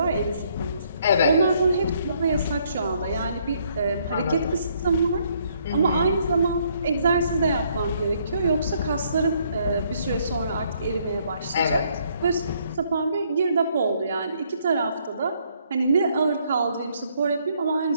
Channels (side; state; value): both; inverted; correlation -0.69